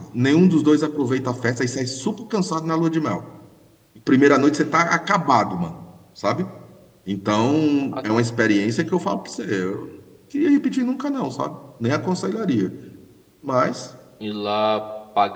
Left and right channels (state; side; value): identical; both; correlation 1.00